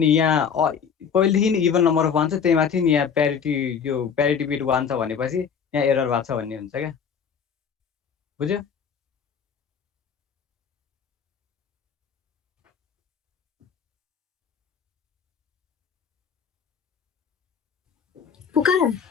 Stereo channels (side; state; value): right; quieter; 6.9 dB